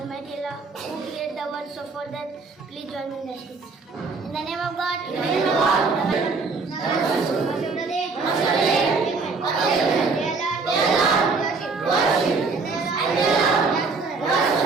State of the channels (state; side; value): quieter; left; 4.3 dB